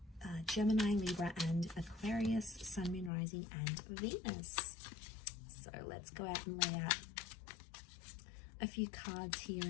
Gemini, Libra, and Aquarius, Sun, Moon, Rising, and Venus. So let's go out and lay out a few cards here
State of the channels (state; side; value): drops out; right; at 3.1 s